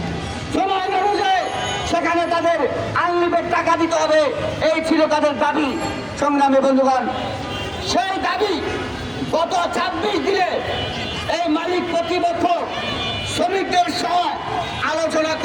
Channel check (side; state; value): both; identical; correlation 1.00